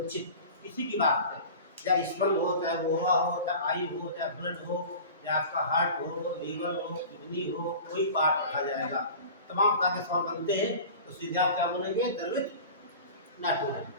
किसी की बात है, चाहे स्पर्म हो, चाहे वोहा हो, चाहे आई हो, चाहे ब्लड हो, चाहे आपका हार्ट हो, लीवर हो, किडनी हो, कोई पार्ट रखा जाएगा, तमाम तरह के सवाल बनते हैं, तो सीधे आप क्या बोलेंगे? द्रवित नाइट्रोजन।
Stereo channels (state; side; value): inverted; both; correlation -0.38